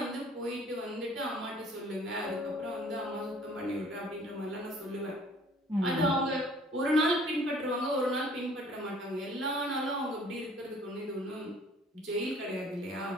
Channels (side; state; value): both; normal; correlation 0.54